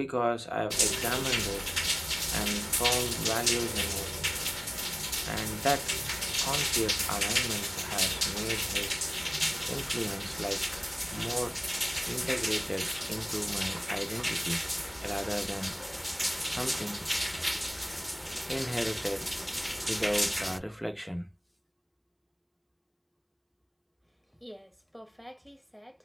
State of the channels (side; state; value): both; identical; correlation 1.00